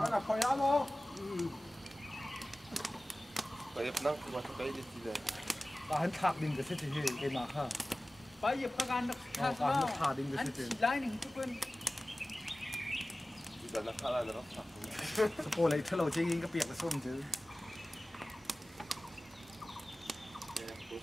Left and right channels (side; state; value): both; normal; correlation 0.97